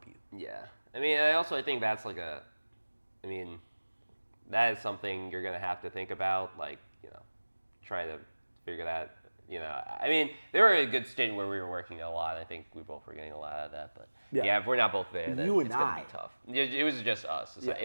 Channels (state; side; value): inverted; both; correlation -1.00